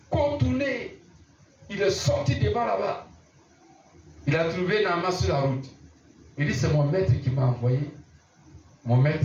contourné, il est sorti devant là-bas. Il a trouvé Naaman sur la route. Il dit, c'est mon maître qui m'a envoyé. Mon maître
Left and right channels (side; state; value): both; identical; correlation 1.00